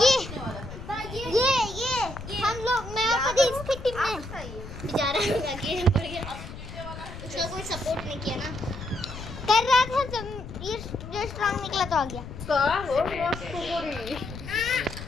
ये हम लोग, मैं और कभी इसकी टीम में बेचारा आगे बढ़ गया, उसका कोई सपोर्ट नहीं किया ना, कर रहा था जब ये जो स्ट्रांग निकला तो आ गया। का हो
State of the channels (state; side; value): noise; left; rumble, 11 dB below the sound